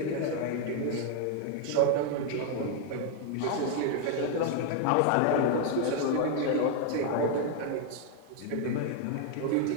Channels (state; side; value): different; both; correlation 0.00